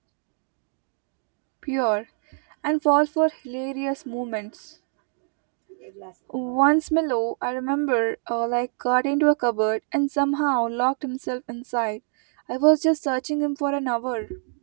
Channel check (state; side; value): silent; left; 60 dB below the other